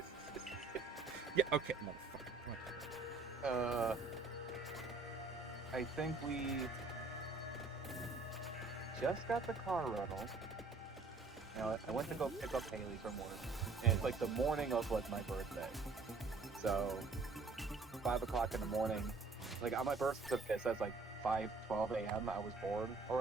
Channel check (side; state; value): left; quieter; 3.9 dB